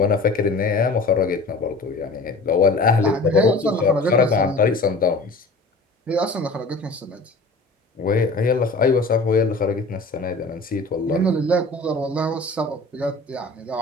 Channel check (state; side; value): quieter; right; 3.2 dB